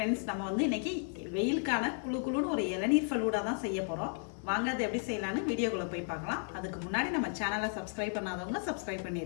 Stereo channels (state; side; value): silent; right; 55 dB below the other